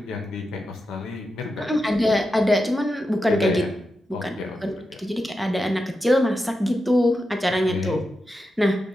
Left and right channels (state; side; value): normal; both; correlation 0.89